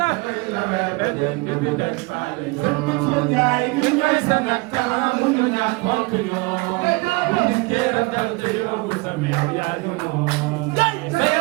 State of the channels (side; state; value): left; quieter; 25.6 dB